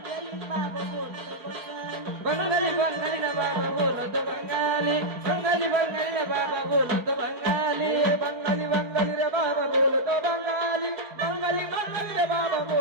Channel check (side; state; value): left; late; 4.3 ms